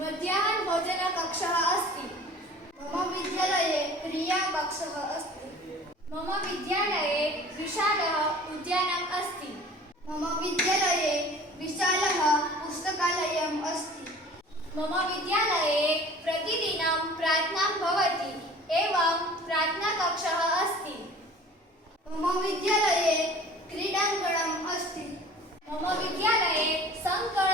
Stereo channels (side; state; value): both; normal; correlation 0.45